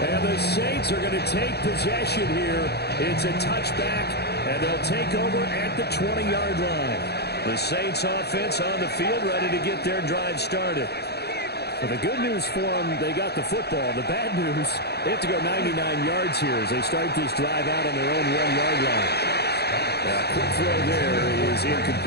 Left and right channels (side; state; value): right; late; 0.48 ms